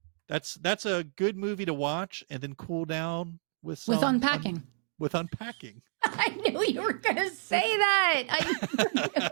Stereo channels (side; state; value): left; silent; 58 dB below the other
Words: That's a good movie to watch and then cool down with With some Unpacking. with Unpacking. I knew you were going to say that. I